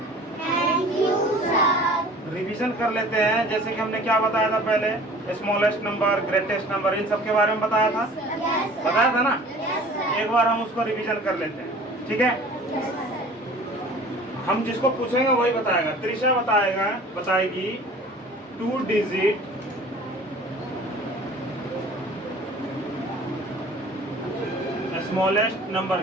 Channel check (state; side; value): normal; both; correlation 0.46